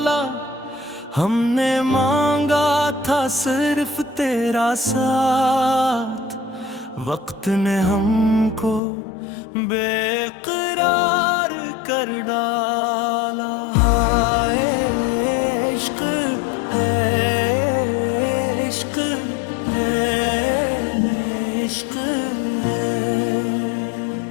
हमने मांगा था सिर्फ तेरा साथ, वक्त ने हमको बेकरार कर डाला। हाय इश्क है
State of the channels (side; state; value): right; drops out; at 8.8 s